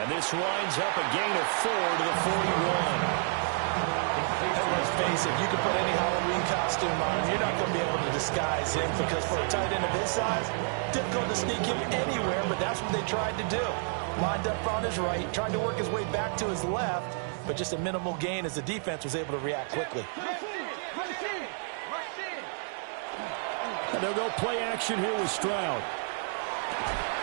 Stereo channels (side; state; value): left; silent; 58 dB below the other